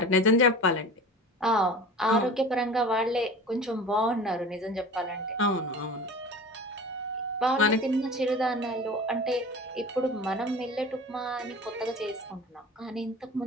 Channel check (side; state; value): both; normal; correlation 0.37